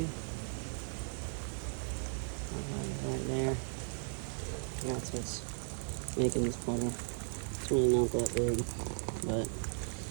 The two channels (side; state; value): left; silent; 53 dB below the other